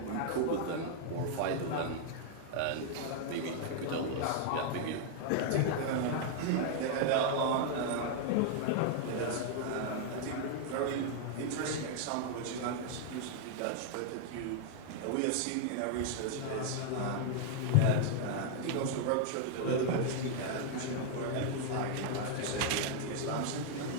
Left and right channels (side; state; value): both; different; correlation 0.00